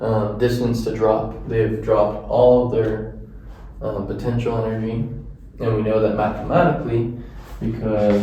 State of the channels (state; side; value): identical; both; correlation 1.00